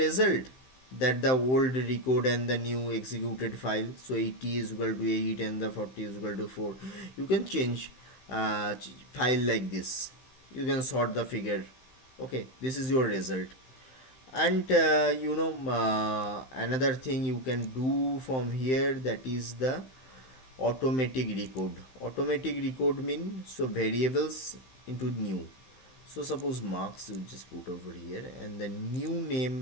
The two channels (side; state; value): right; late; 15 ms